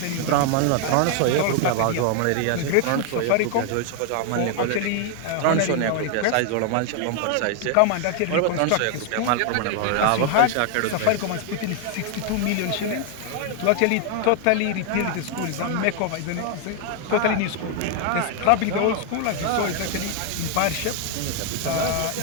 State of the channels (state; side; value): different; both; correlation 0.00